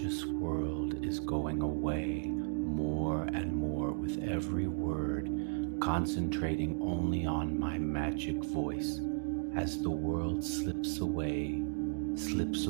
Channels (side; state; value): left; silent; digital silence